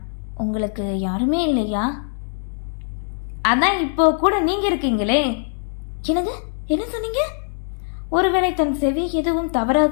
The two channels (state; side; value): silent; right; digital silence